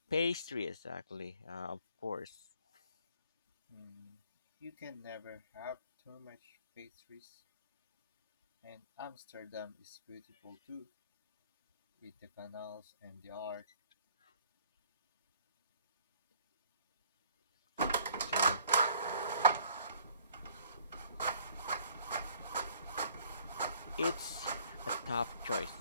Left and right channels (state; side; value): inverted; both; correlation -0.58